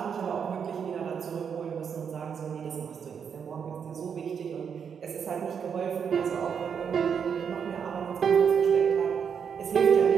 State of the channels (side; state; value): left; quieter; 7.1 dB